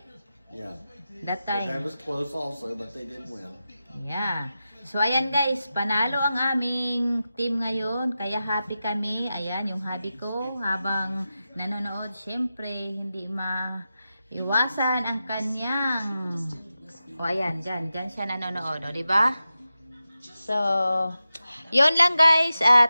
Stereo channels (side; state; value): both; inverted; correlation -0.92